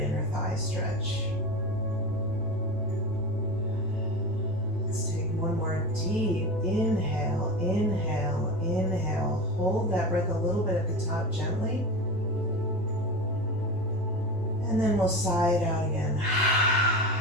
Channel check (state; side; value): normal; both; correlation 0.26